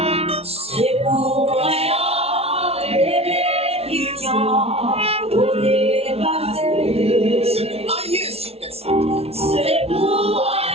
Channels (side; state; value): left; late; 0.30 ms